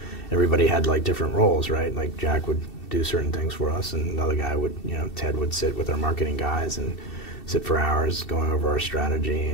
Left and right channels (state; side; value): late; right; 2.7 ms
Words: everybody had like different roles, right? Like Jack would do certain things for us, and another guy would, Ted would sit with our marketing guys and sit for hours going over our strategy,